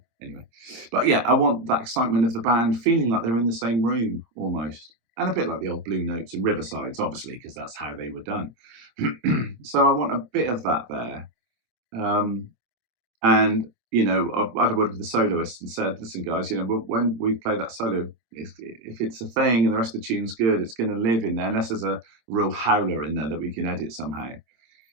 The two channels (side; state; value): left; late; 25 ms